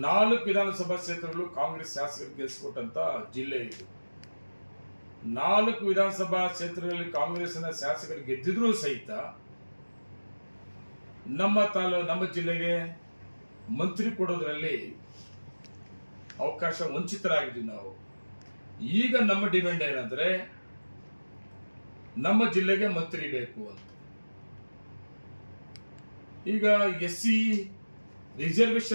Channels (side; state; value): both; inverted; correlation -1.00